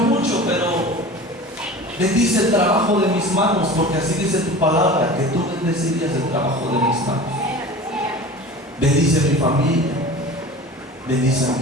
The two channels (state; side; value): normal; both; correlation 0.37